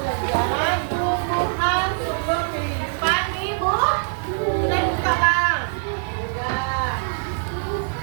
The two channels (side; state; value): left; silent; digital silence